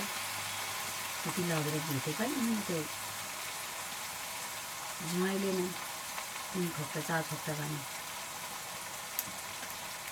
त्यति लगेर दिन्थ्यो कहिले त्यो मैले नै 3 खोक्टा 4 खोक्टा भने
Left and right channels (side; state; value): both; identical; correlation 1.00